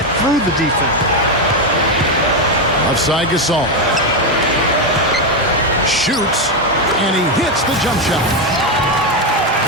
through the defense. Offside Gasol. Shoots, and he hits the jump shot.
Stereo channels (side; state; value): both; normal; correlation 0.07